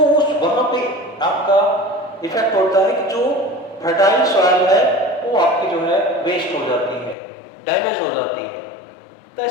उस वहां पे आपका इफेक्ट होता है कि जो फर्टाइल सॉइल है वो आपकी जो है वेस्ट हो जाती है, डैमेज हो जाती है। तो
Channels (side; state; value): right; drops out; at 7.2 s